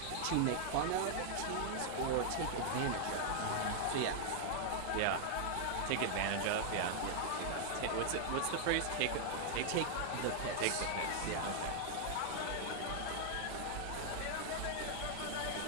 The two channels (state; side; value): different; both; correlation 0.00